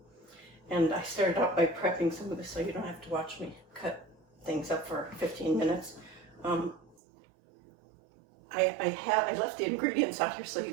And I started out by prepping some of this so you don't have to watch me cut things up for 15 minutes. I left the ingredients out here so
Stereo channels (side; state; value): left; drops out; at 7.0 s